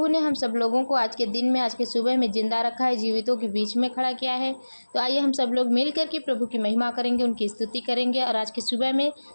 ने हम सब लोगों को आज के दिन में, आज के सुबह में जिंदा रखा है, जीवितों के बीच में खड़ा किया है। तो आइए हम सब लोग मिल करके प्रभु की महिमा करेंगे, उनकी स्तुति करेंगे। और आज के सुबह में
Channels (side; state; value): both; inverted; correlation -1.00